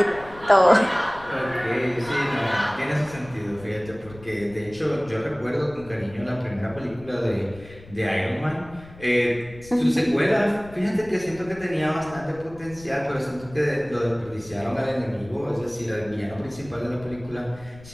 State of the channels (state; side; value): noise; left; rumble, 19 dB below the sound